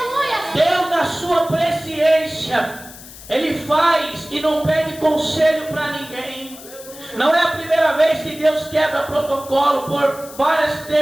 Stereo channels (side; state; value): left; noise; hiss, 17 dB below the sound